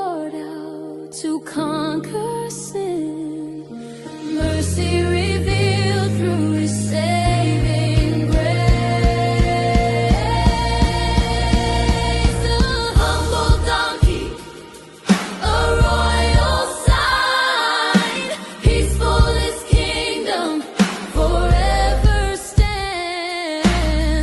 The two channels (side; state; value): both; identical; correlation 1.00